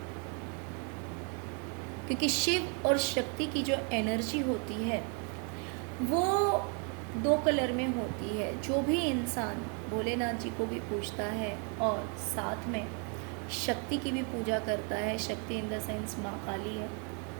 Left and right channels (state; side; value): quieter; left; 37.7 dB